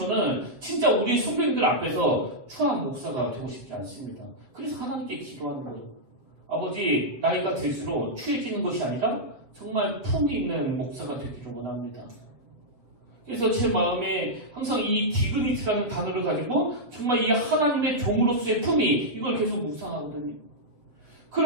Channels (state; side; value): late; left; 8.0 ms